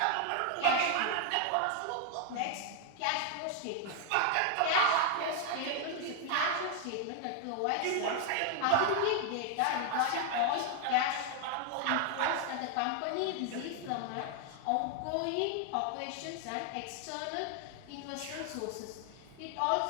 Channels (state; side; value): different; both; correlation 0.00